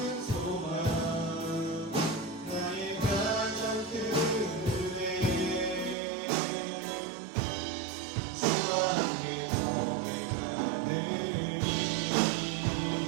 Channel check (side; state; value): left; drops out; at 6.0 s